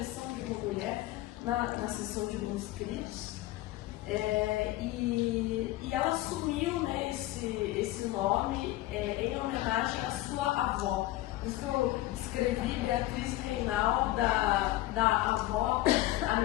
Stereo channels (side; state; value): right; quieter; 16.5 dB